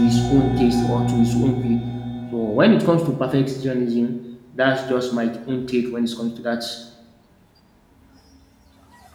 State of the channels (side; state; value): both; identical; correlation 1.00